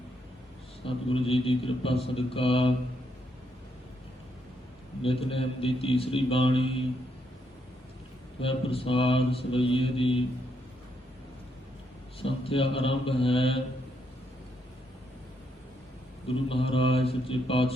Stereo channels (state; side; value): normal; both; correlation 0.77